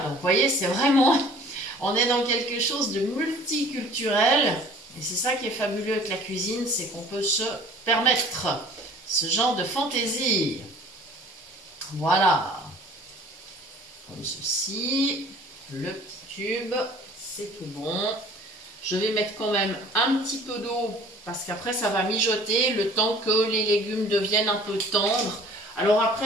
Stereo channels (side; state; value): both; normal; correlation 0.49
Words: Donc, vous voyez, c'est vraiment, on est dans quelque chose de multiculturel, et c'est ça qui est fabuleux avec la cuisine, c'est qu'on peut se permettre ce genre de fantaisie. Voilà, comme ceci, le petit tube. C'est tout bon. Je vais mettre quand même un petit peu d'eau parce qu'après ça va mijoter le temps que les légumes deviennent un peu tendres. Alors